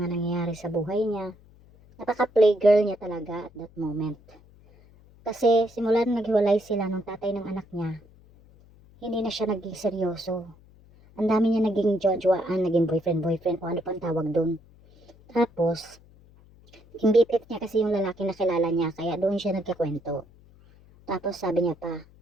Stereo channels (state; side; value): noise; left; hum, 26 dB below the sound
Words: nangyayari sa buhay niya. Napaka-playgirl niya talaga at that moment. Kasi simula nang naghiwalay sila ng tatay ng anak niya, hindi na siya naging seryoso. Ang dami niya naging jojoaan, naging boyfriend, o ano pang tawag doon. Tapos, yung BFF niya kasi yung lalaki na kilala niya, kaya doon siya nagkakwento. Tapos sabi niya pa,